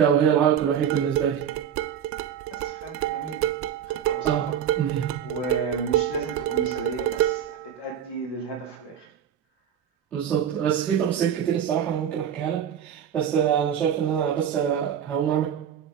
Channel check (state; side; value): quieter; left; 9.0 dB